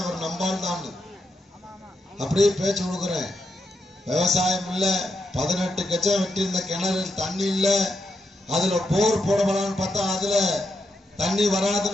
அவர் நம்பால் தான். அப்படியே பேச்சு கொடுக்குறேன். விவசாயம் இல்ல, 18 கச்சம் வெட்டி இருந்த கிணறு தண்ணி இல்ல, அதுல போர் போடப்படான்னு பார்த்தா அதுல தண்ணி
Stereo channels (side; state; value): both; normal; correlation 0.83